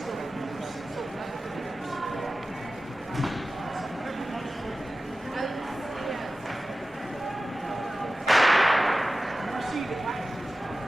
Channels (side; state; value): both; normal; correlation 0.95